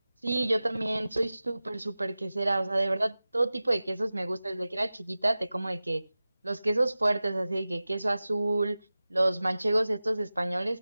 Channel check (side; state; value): both; inverted; correlation -0.96